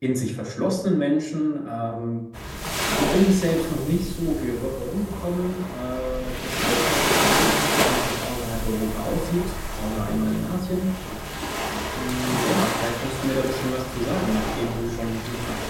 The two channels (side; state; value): both; identical; correlation 1.00